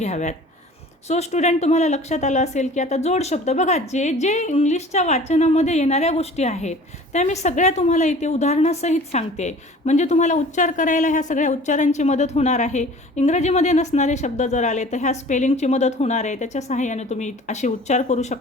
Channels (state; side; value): normal; both; correlation 0.45